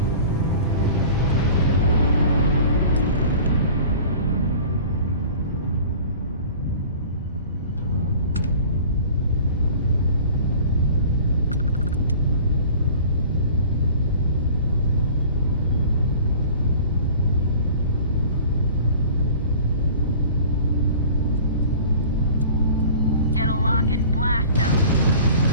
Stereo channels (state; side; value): inverted; both; correlation -0.44